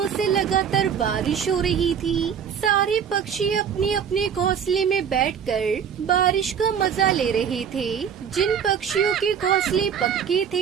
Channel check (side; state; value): left; quieter; 7.7 dB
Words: से लगातार बारिश हो रही थी। सारे पक्षी अपने अपने घोंसले में बैठकर बारिश का मजा ले रहे थे। जिन पक्षियों के घोंसले पक्के थे